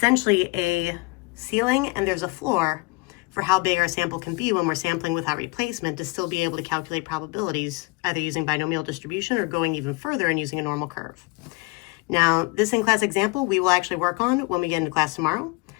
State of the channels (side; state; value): right; quieter; 26.5 dB